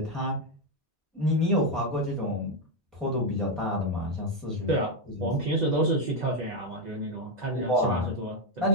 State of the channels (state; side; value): normal; both; correlation 0.06